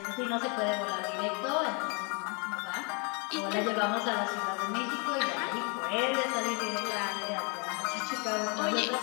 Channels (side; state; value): right; quieter; 34.1 dB